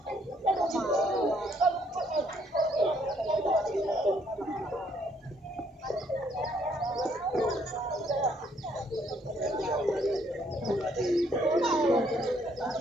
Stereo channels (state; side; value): normal; both; correlation 0.68